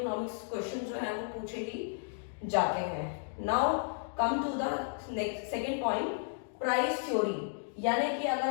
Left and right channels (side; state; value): right; silent; digital silence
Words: क्वेश्चन जो है वो पूछे ही जाते हैं। Now come to the second point, price theory. यानी कि अगर